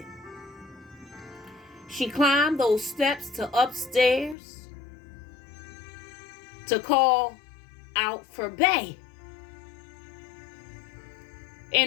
She climbed those steps to upstairs to call out for Bay.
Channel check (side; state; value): right; drops out; at 4.4 s